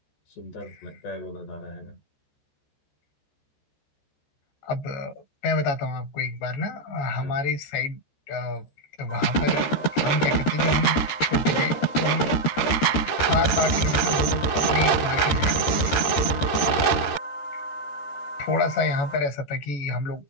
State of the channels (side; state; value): right; late; 13 ms